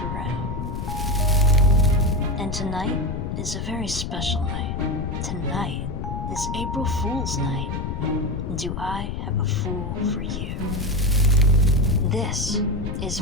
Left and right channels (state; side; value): noise; left; rumble, 4 dB below the sound